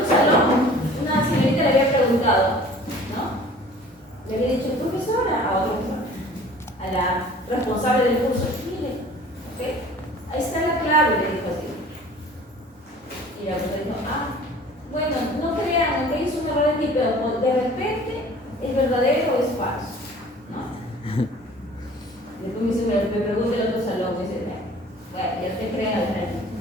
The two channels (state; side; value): normal; both; correlation 0.48